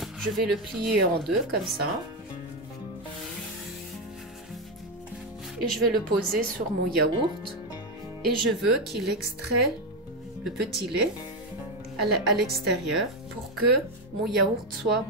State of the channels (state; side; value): normal; both; correlation 0.09